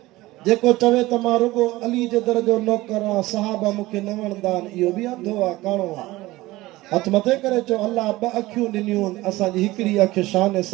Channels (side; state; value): left; quieter; 18.6 dB